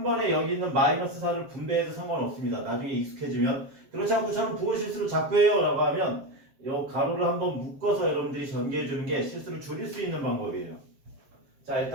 번에 여기 있는 마이너스 4를 분배해도 상관없습니다. 나중에 익숙해지면. 그렇지 않고 저는 부호 실수를 자꾸 해요 라고 하면 이 가로를 한번 묶어서 여러분들이 전개해주는 게 실수를 줄일 수 있는 방법이에요. 자,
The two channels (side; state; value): left; late; 7.4 ms